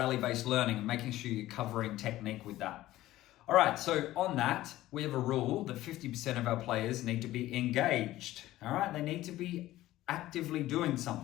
learning, and making sure you're covering technique with that. All right, so on that, we have a rule that 50% of our players need to be engaged. All right, they need to be actively doing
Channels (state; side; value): quieter; right; 15.6 dB